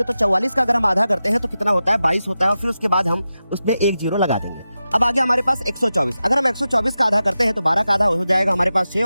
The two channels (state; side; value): inverted; both; correlation -0.92